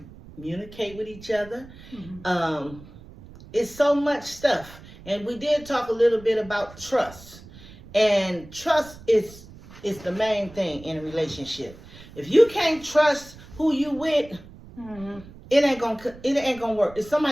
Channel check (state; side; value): noise; right; rumble, 19 dB below the sound